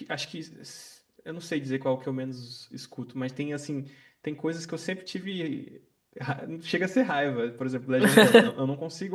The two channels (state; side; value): identical; both; correlation 1.00